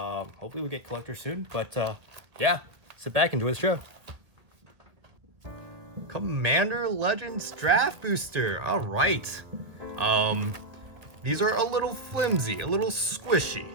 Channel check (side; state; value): left; late; 1.5 ms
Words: we get collectors soon, but yeah, sit back and enjoy the show. Commander Legends draft booster, all right. These are a little flimsy, a little squishy.